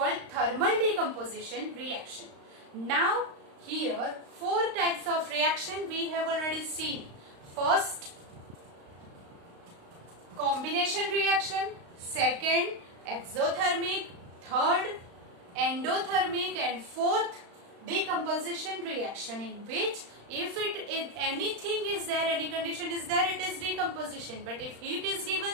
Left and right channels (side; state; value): left; late; 35 ms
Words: thermal decomposition reaction. Now here 4 types of reaction we have already seen. First, combination reaction. Second, exothermic. Third, endothermic. And fourth, decomposition reaction, in which if anything is there, any condition is there, it is decomposition. But if heat is